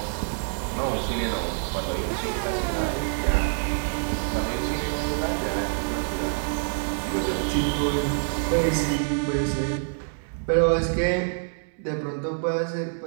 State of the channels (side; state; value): left; silent; digital silence